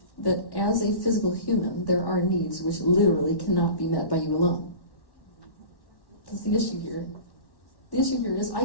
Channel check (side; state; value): right; late; 1.1 ms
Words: that as a physical human, there are needs which literally cannot be met by you alone? That's the issue here. The issue here is I